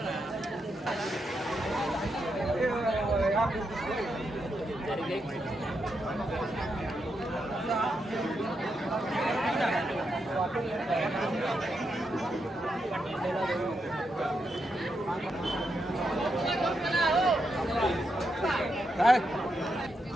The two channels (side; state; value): both; normal; correlation 0.83